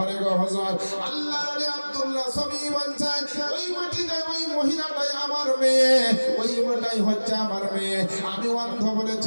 গো হুজুর। আল্লাহ আলী আব্দুল্লাহ সবই বলছে ওই মাটিটাই ওই মহিলাটাই আমার মেয়ে, ওই মেয়েটাই হচ্ছে আমার মেয়ে। আমি অন্ধ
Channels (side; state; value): both; inverted; correlation -1.00